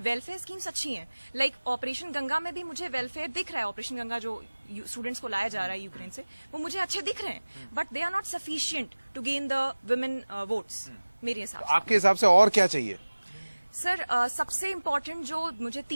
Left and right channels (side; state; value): both; inverted; correlation -1.00